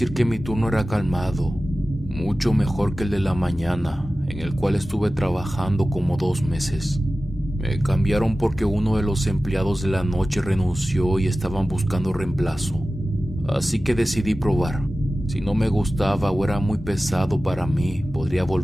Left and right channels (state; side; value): normal; both; correlation 0.96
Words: que mi turno era calmado, mucho mejor que el de la mañana, en el cual estuve trabajando como 2 meses. Me cambiaron porque uno de los empleados de la noche renunció y estaban buscando reemplazo. Así que decidí probar. Si no me gustaba o era muy pesado para mí, podría